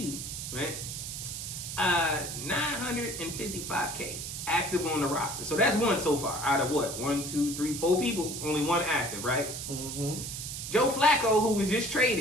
right? $955K active on the roster. So that's one so far. Out of what? 1, 2, 3, 4 people, only one active, right? Mm-hmm. Joe Flacco, who was just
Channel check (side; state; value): right; noise; hiss, 6 dB below the sound